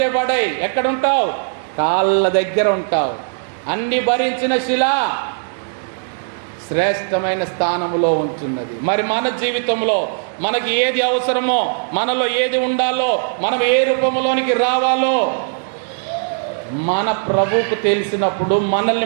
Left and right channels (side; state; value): left; silent; digital silence